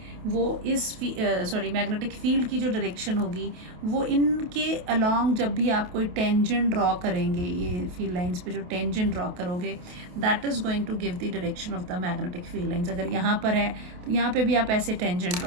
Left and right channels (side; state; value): left; late; 28 ms